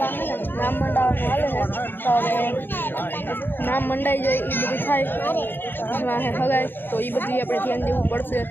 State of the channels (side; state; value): right; late; 0.098 ms